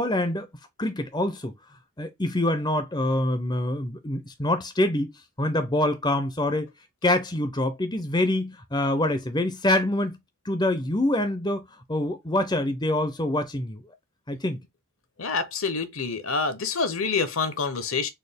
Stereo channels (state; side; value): normal; both; correlation 0.52